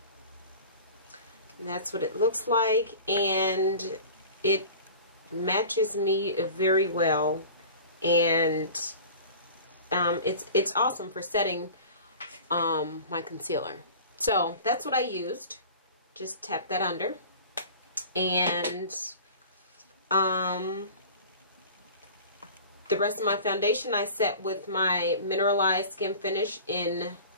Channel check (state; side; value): inverted; both; correlation -0.40